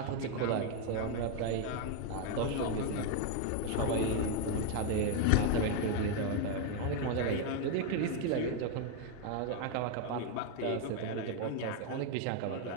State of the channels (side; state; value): both; different; correlation 0.01